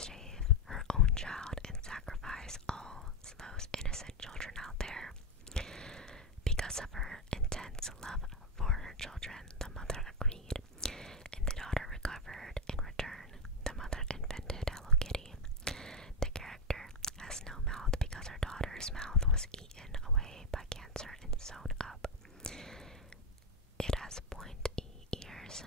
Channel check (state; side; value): normal; both; correlation 0.07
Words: her own child and sacrifice all those innocent children out there? Because of her intense love for her children, the mother agreed, and the daughter recovered. In return, the mother invented Hello Kitty. The character has no mouth because her daughter's mouth was eaten away by cancer and sewn up. It has pointy ears